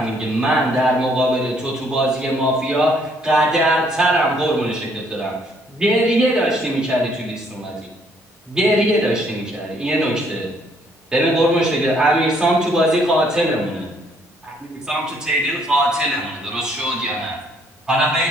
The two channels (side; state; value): both; normal; correlation 0.66